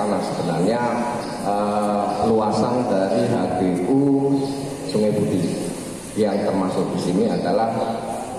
sebenarnya luasan dari HGU Sungai Budi yang termasuk di sini adalah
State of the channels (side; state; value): both; identical; correlation 1.00